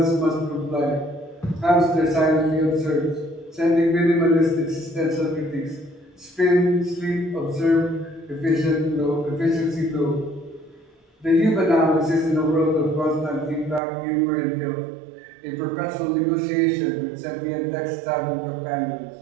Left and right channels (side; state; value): left; drops out; at 13.8 s